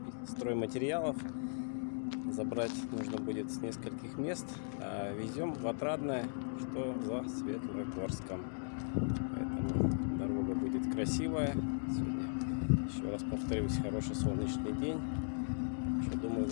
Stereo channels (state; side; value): silent; right; digital silence